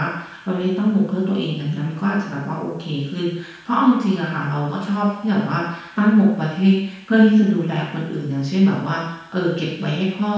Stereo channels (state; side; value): identical; both; correlation 1.00